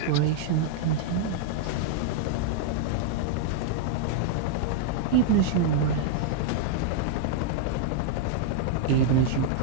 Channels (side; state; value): both; different; correlation -0.01